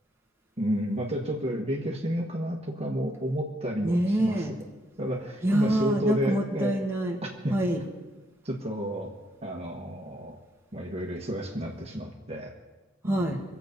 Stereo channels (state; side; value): normal; both; correlation 0.74